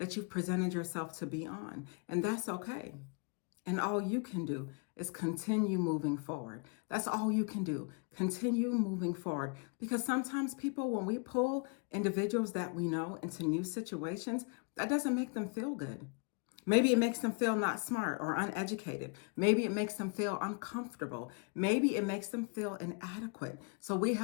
you've presented yourself to be on. And that's okay. And all you can do is continue moving forward. That's all you can do. Continue moving forward. Because sometimes people, when we pull individuals that we know into new situations, that doesn't make them feel good. Maybe it makes them feel not smart or uneducated. Maybe it makes them feel uncomfortable. Maybe it makes them feel inadequate. So we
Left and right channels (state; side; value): quieter; right; 35.9 dB